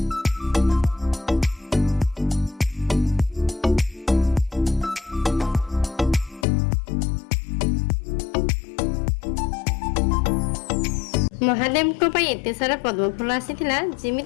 महादेव को पाई एते सारा पद्म फूल आसीथिला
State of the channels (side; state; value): right; drops out; at 6.5 s